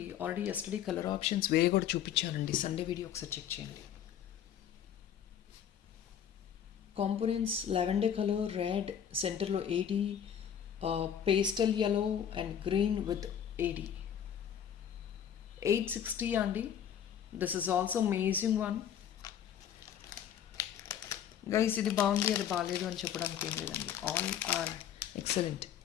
ఆల్రెడీ ఎస్టర్డే కలర్ ఆప్షన్స్ వేరే కూడా చూపించానండి. సండే వీడియో ఒకసారి చెక్ చేయండి. కాంపోనెంట్స్ లావెండర్ కలర్, రెడ్, సెంటర్లో AD, pastel yellow and green with AD. 860 అండి. This is also amazing one guys. ఇది బాగుంది అది బాగాలేదు అని చెప్పడానికి ఏం లేదండి. All are excellent.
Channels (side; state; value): right; quieter; 9.2 dB